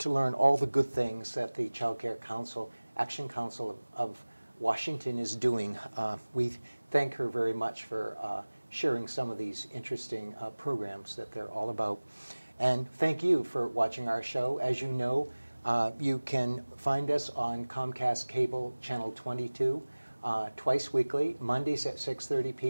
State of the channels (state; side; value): inverted; both; correlation -1.00